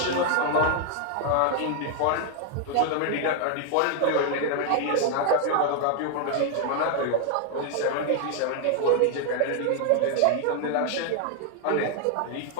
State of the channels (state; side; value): different; both; correlation 0.00